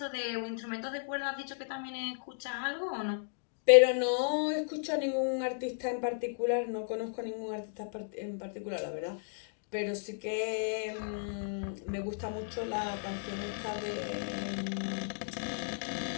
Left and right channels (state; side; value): silent; right; digital silence